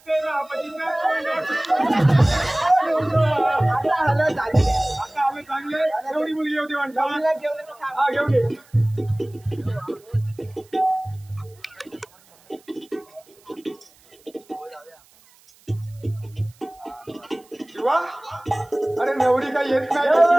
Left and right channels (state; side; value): noise; right; hiss, 29 dB below the sound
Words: ते रापतीचं बोंड. आता हळद झाली. आता आम्ही चांगले एवढी मुलगी होती म्हणता नवरीला घेऊन येतो थांब. हा घेऊन ये शिवा अरे नवरी काही येत नाही